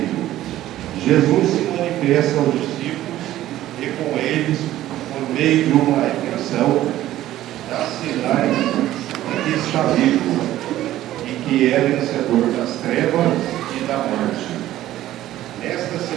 Jesus se manifesta aos discípulos e com eles, por meio de uma recriação, dá sinais de que está vivo e que é vencedor das trevas e da morte. Nesta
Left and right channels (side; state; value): left; quieter; 14.0 dB